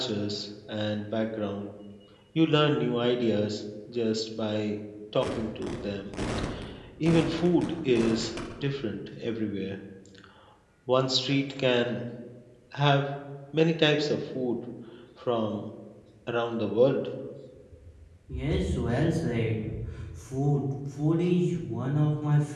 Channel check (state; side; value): identical; both; correlation 1.00